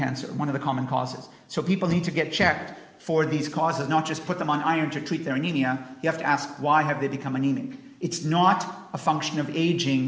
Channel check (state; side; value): identical; both; correlation 1.00